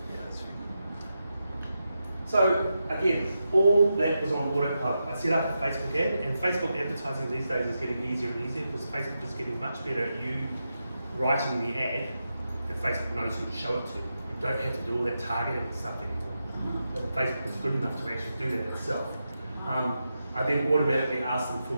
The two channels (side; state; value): both; inverted; correlation -0.88